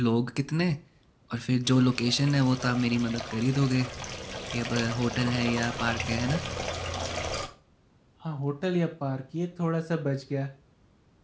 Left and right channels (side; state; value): both; identical; correlation 1.00